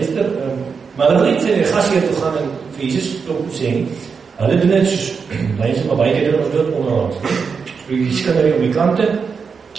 maar hulle wil nie vir die gasheer toe gaan en vir Jesus klop sê nie. Hulle doen dit soos, mense maar baie keer doen ons dood onderlangs. So die skinderie op die kante,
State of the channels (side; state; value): left; quieter; 5.6 dB